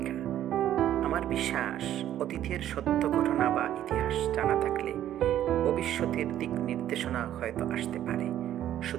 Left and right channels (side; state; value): left; quieter; 11.8 dB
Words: আমার বিশ্বাস, অতীতের সত্য ঘটনা বা ইতিহাস জানা থাকলে ভবিষ্যতের দিক নির্দেশনা হয়তো আসতে পারে।